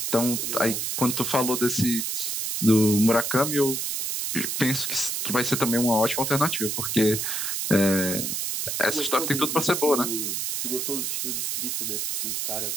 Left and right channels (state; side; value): noise; right; hiss, 1 dB below the sound